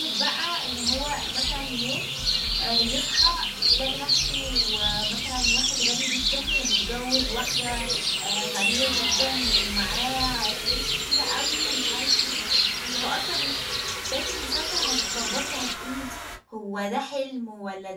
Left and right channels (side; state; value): both; identical; correlation 1.00